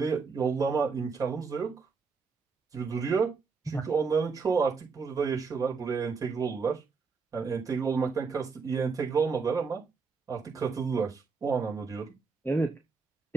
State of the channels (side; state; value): left; quieter; 5.0 dB